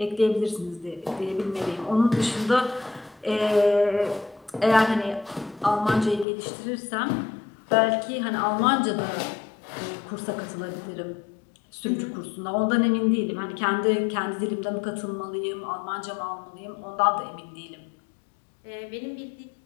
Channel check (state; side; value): drops out; right; at 6.2 s